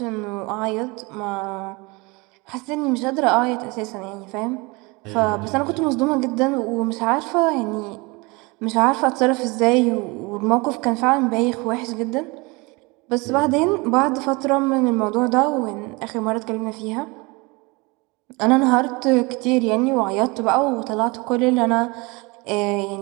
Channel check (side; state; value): left; quieter; 26.2 dB